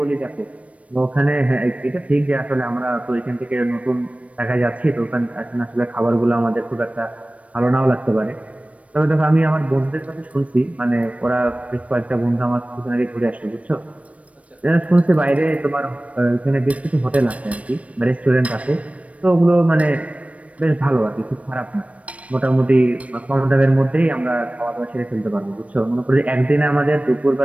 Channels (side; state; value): left; late; 0.065 ms